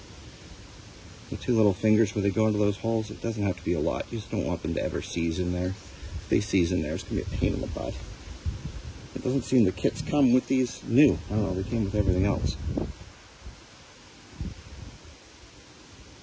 The two little fingers where they go into those holes, it doesn't have to be a lot. You just don't want them to ever seize in there. If they seize in there, it's going to be a pain in the butt. It doesn't seem the kits come with these new. I don't know, they came with everything else.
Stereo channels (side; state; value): both; identical; correlation 1.00